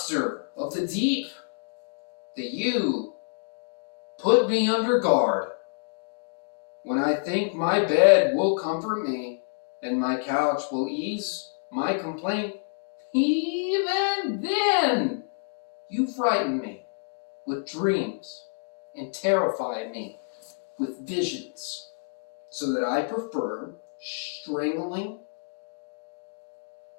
of the deep that you put me under guard? When I think my bed will comfort me and my couch will ease my complaint, even then you frighten me with dreams and terrify me with visions, so that I prefer strangling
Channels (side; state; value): right; silent; digital silence